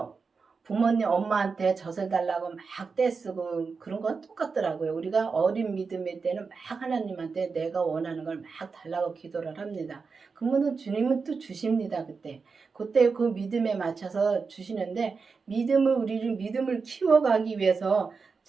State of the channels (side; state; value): left; quieter; 4.9 dB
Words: 부모님 엄마한테 젖을 달라고 막 떼쓰고 그런 거 똑같더라고요. 우리가 어린 믿음의 때는 막 하나님한테 내가 원하는 걸 막 달라고 기도를 합니다. 그러면 주님은 또 주십니다. 그때 그 믿음에 맞춰서 주시는데 우리를 믿음을 키워가기 위해서